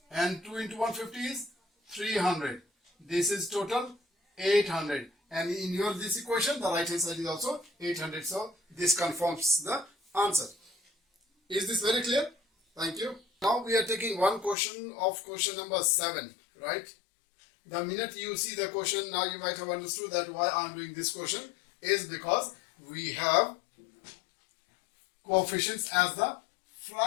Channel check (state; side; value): drops out; right; at 14.6 s